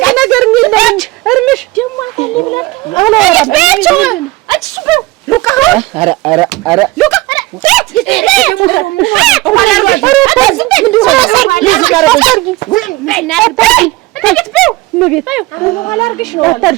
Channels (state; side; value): quieter; left; 19.7 dB